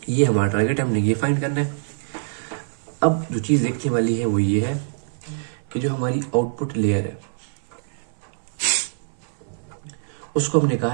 ये हमारा टारगेट है, हमने ये फाइंड करना है। अब जो चीज़ देखने वाली है वो ये है कि जो हमारी आउटपुट लेयर है उसको हमने कहा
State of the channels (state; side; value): silent; left; digital silence